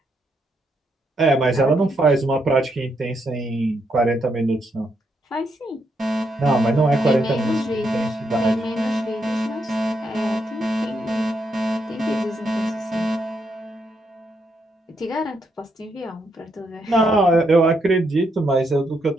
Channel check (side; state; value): both; normal; correlation 0.78